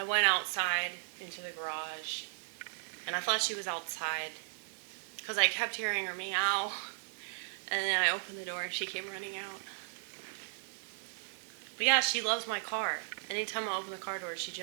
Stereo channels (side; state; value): left; silent; digital silence